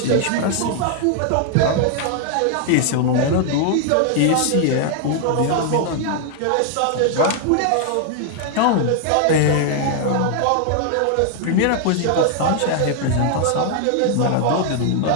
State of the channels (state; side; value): different; both; correlation 0.00